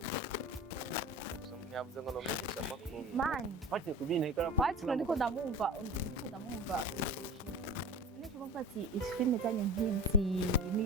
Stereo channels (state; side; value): normal; both; correlation 0.34